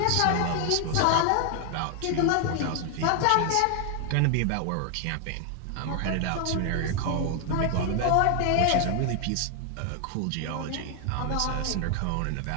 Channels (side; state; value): both; different; correlation 0.00